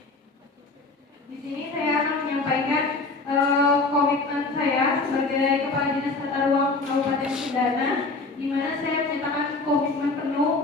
di sini saya akan menyampaikan komitmen saya sebagai Kepala Dinas Tata Ruang Kabupaten Cendana, di mana saya menyatakan komitmen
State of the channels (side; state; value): right; quieter; 3.6 dB